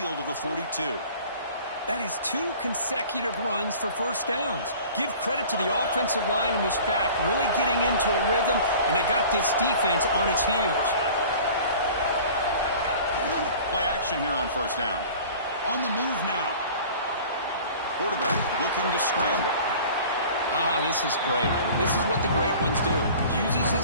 of the 42. That is 2 consecutive runs for first downs. Give credit to the offensive line and this back really getting into a rhythm, and they got this defense on its heels. Play action here on first down. On the move now. Quarterback looking to scramble. This is great. This is what the great ones do. Uses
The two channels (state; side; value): inverted; both; correlation -0.44